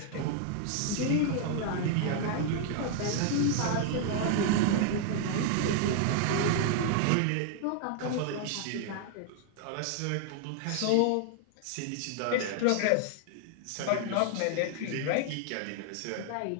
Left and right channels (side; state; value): both; different; correlation 0.00